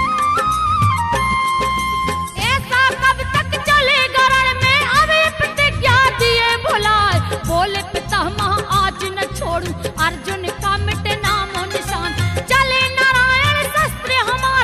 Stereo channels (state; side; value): identical; both; correlation 1.00